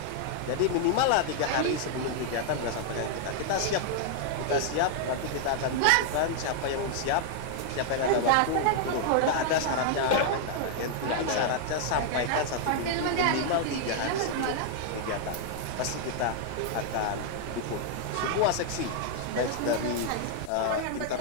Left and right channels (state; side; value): different; both; correlation 0.00